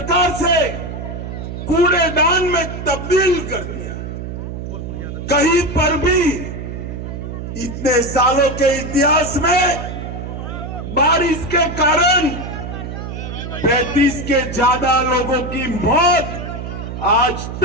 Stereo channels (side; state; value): right; noise; hum, 7 dB below the sound